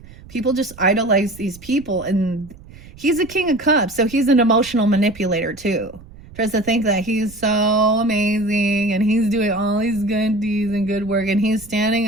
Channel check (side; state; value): right; noise; rumble, 20 dB below the sound